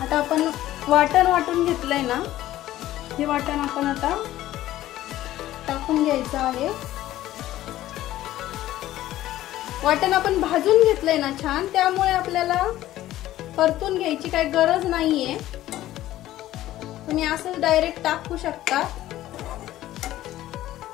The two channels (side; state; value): right; quieter; 14.4 dB